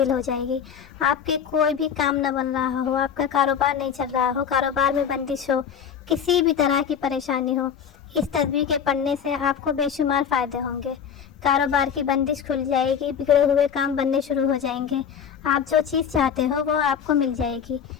ہو جائے گی۔ آپ کے کوئی بھی کام نہ بن رہا ہو، آپ کا کاروبار نہیں چل رہا ہو، کاروبار میں بندش ہو، کسی بھی طرح کی پریشانی ہو، اس تسبیح کے پڑھنے سے آپ کو بے شمار فائدے ہوں گے۔ کاروبار کی بندش کھل جائے گی، بگڑے ہوئے کام بننے شروع ہو جائیں گے، آپ جو چیز چاہتے ہو وہ آپ کو مل جائے گی۔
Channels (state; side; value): quieter; right; 7.7 dB